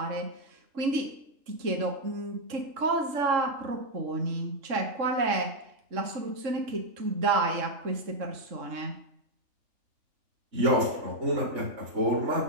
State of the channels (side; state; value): left; late; 3.6 ms